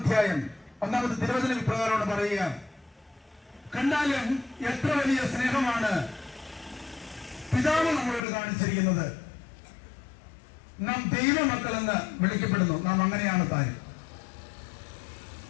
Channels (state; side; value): drops out; right; at 8.2 s